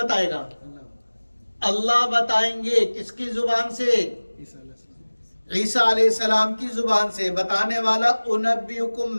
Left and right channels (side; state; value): both; inverted; correlation -1.00